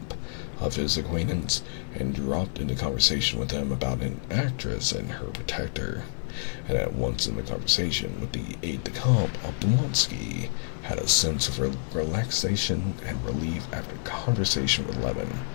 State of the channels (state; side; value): silent; right; digital silence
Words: of his acquaintance, and dropped into conversation with him about an actress and her protector. And at once in the conversation with the aide-de-camp, Oblonsky had a sense of relaxation and relief after conversation with Levin,